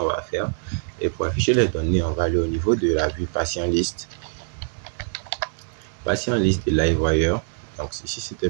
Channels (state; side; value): silent; left; 61 dB below the other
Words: va faire. Et pour afficher les données, on va aller au niveau de la vue patient liste. Patient liste de LiveWire. Donc, ici, c'était